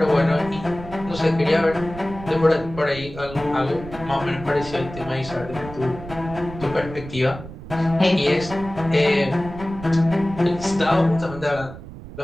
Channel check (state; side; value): noise; right; rumble, 14 dB below the sound